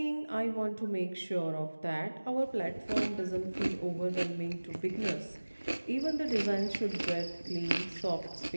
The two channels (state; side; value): inverted; both; correlation -1.00